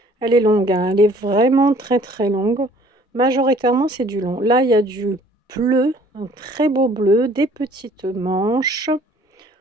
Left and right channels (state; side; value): normal; both; correlation 0.56